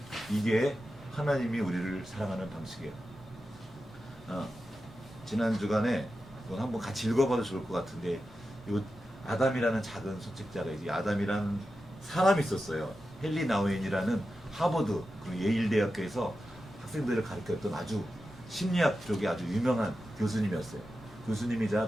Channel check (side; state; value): both; normal; correlation 0.91